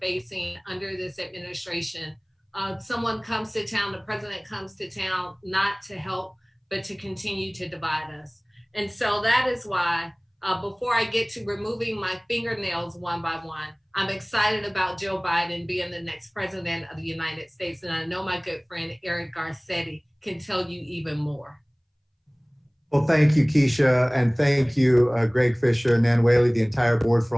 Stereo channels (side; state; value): both; identical; correlation 1.00